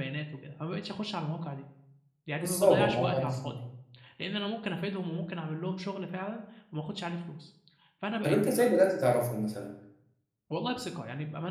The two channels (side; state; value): both; identical; correlation 1.00